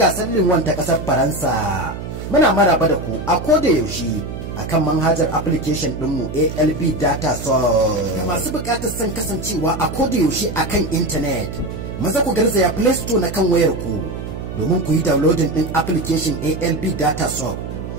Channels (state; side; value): noise; right; hum, 8 dB below the sound